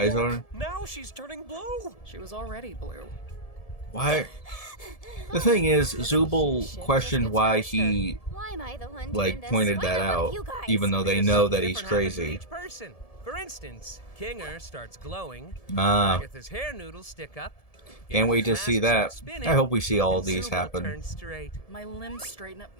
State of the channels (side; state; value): right; late; 1.7 ms